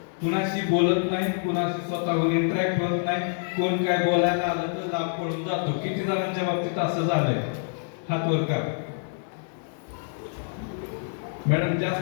कुणाशी बोलत नाही, कुणाशी स्वतःहून इंटरॅक्ट होत नाही, कोण काय बोलायला आलं तर लांब पडून जातो. किती जणांच्या बाबतीत असं झालंय? हात वर करा. मॅडम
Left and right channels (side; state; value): right; silent; digital silence